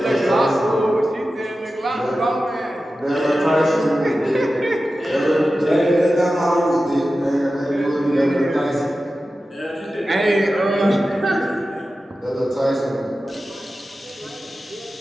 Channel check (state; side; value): normal; both; correlation 0.94